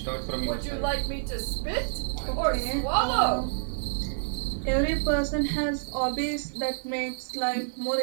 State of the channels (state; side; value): silent; left; digital silence